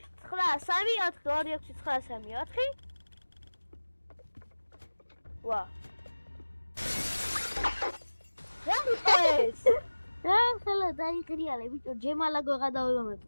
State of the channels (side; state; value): both; inverted; correlation -1.00